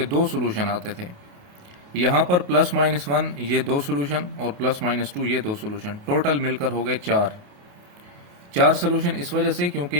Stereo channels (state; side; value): late; left; 28 ms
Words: दो सोल्यूशन आते थे। यहाँ पर +-1 ये दो सोल्यूशन और +-2 ये दो सोल्यूशन, टोटल मिलकर हो गए 4 सोल्यूशन। इस वजह से